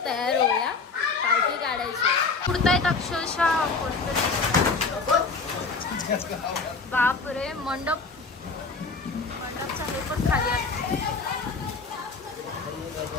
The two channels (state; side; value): quieter; right; 4.3 dB